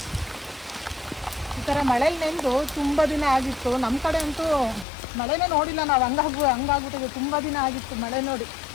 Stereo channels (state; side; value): drops out; right; at 4.9 s